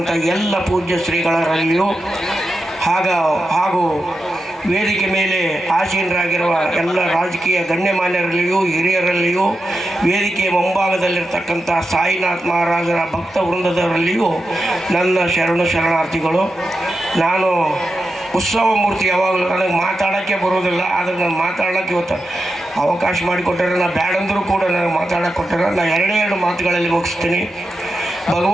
ಎಲ್ಲ ಪೂಜ್ಯ ಶ್ರೀಗಳರಲ್ಲಿಯೂ ಹಾಗೂ ವೇದಿಕೆ ಮೇಲೆ ಆಸೀನರಾಗಿರುವ ಎಲ್ಲ ರಾಜಕೀಯ ಗಣ್ಯಮಾನ್ಯರಲ್ಲಿಯೂ ಹಿರಿಯರಲ್ಲಿಯೂ ವೇದಿಕೆಯ ಮುಂಭಾಗದಲ್ಲಿರ್ತಕ್ಕಂಥ ಸಾಯಿನಾಥ್ ಮಹಾರಾಜರ ಭಕ್ತ ವೃಂದದವರಲ್ಲಿಯೂ ನನ್ನ ಶರಣಾರ್ಥಿಗಳು. ನಾನು ಉತ್ಸವ ಮೂರ್ತಿ ಯಾವಾಗಲೂ ನನಗೆ ಮಾತಾಡೋಕ್ಕೆ ಬರೋದಿಲ್ಲ, ಆದರೆ ನಾನು ಮಾತಾಡೋಕ್ಕೆ ಇವತ್ತು ಅವಕಾಶ ಮಾಡಿಕೊಟ್ಟರೆ ನಾನು ಬ್ಯಾಡಂದರೂ ಕೂಡ ನನಗೆ ಮಾತಾಡೋಕ್ಕೆ ಕೊಟ್ಟರೆ ನಾನು ಎರಡೇ ಮಾತುಗಳಲ್ಲಿ ಮುಗಿಸ್ತೀನಿ.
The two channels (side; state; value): both; normal; correlation 0.89